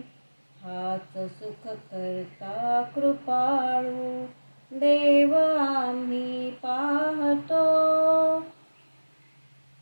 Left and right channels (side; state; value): both; inverted; correlation -1.00